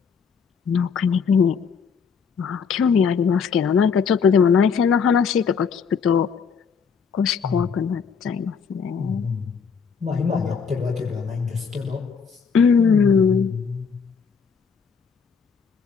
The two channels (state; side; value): quieter; right; 6.1 dB